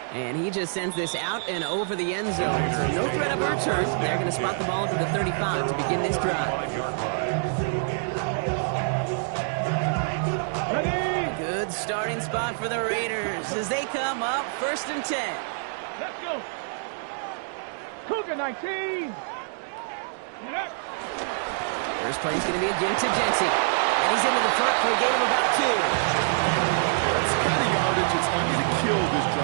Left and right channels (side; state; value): left; silent; digital silence